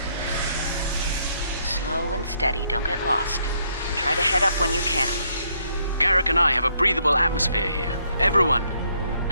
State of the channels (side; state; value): both; inverted; correlation -0.71